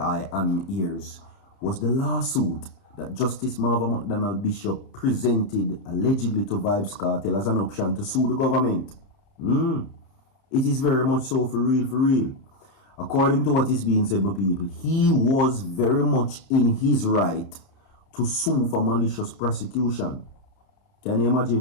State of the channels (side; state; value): right; late; 30 ms